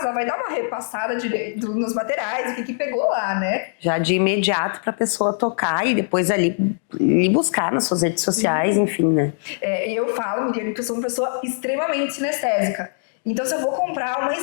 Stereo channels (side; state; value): right; silent; 64 dB below the other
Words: ela vai dar uma repassada nos materiais, o que pegou lá, né? Já de imediato para a pessoa tocar e depois ali buscar nas suas redes sociais, enfim, né? Eu falo, Miriane, que eu sou uma pessoa extremamente sinestésica. Então, se eu vou comprar uma